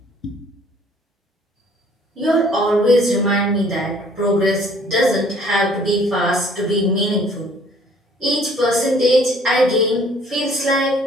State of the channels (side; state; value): both; normal; correlation 0.57